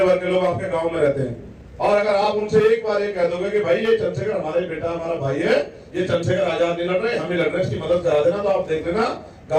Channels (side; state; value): both; identical; correlation 1.00